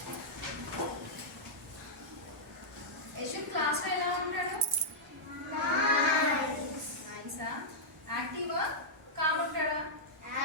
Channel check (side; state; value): both; normal; correlation -0.09